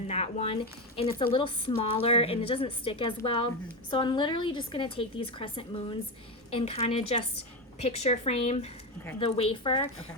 that one, and it's a little smaller and it doesn't stick as well. So I'm literally just gonna take these crescent moons and kind of just picture frame the wafer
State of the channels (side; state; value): both; normal; correlation 0.14